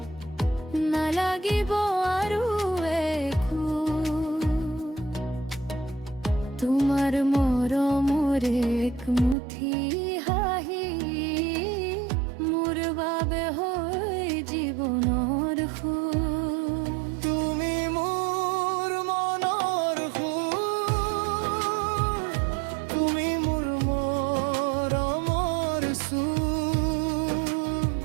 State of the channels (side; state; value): left; drops out; at 9.3 s